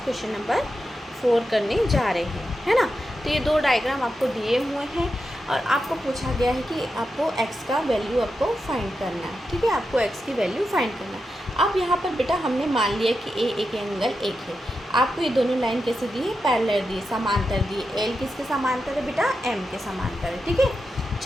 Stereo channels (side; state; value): both; normal; correlation 0.88